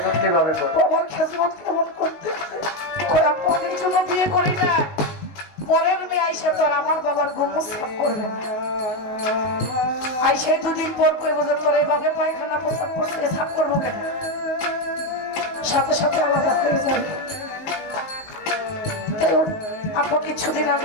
খেজমত কেমন করতেছে। পরের জন্য বিয়ে করি না, পরের মেয়ে আইসা তো আর আমার বাবার গোমর সাফ করবে না। আইসাই দুদিন পর করবো যে তোর এভাবে পায়খানা প্রস্রাব করছে, সাফ করবো কেন? সাথে সাথে আলাদা হয়ে যাবে। তাই ওর আপা কিছুদিন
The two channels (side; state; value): right; late; 19 ms